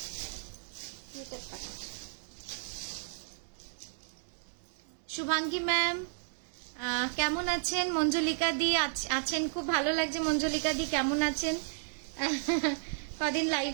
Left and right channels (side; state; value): left; silent; digital silence